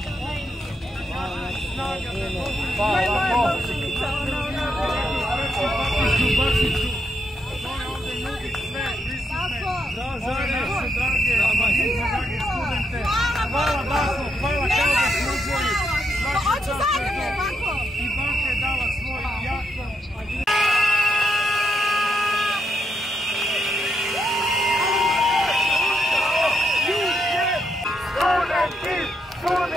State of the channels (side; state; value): both; normal; correlation 0.80